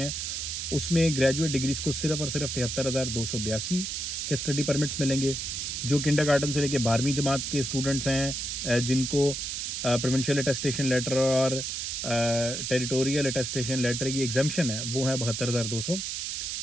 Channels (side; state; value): right; noise; hiss, 3 dB below the sound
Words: उसमें ग्रेजुएट डिग्रीज को सिर्फ और सिर्फ 73,282 के स्टडी परमिट्स मिलेंगे। जो किंडरगार्टन से लेके 12वीं जमात के स्टूडेंट्स हैं जिनको प्रोविंशियल अटेस्टेशन लेटर और टेरिटोरियल अटेस्टेशन लेटर की एग्जाम्पशन है वो है 72,200,